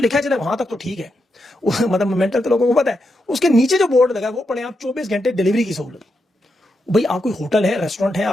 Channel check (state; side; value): normal; both; correlation 0.84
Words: लिखा है चले वहां तक तो ठीक है, मतलब मेंटल तो लोगों को पता है। उसके नीचे जो बोर्ड लगा है वो पढ़े आप 24 घंटे डिलीवरी की सहूलत। भाई आप कोई होटल है, रेस्टोरेंट है,